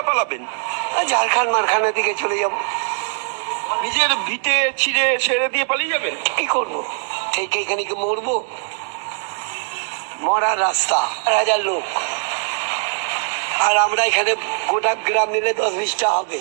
পালাবেন? ঝাড়খণ্ড মারখানের দিকে চলে যাব। নিজের ভিটে ছিঁড়ে ছেড়ে দিয়ে পালিয়ে যাবেন? কি করব? ঠিক এইখানে কি মরবো? মরার রাস্তা, 1000 লোক, আর আমরা এখানে গোটা গ্রাম মিলে 10-20টা হবে।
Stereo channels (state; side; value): silent; left; digital silence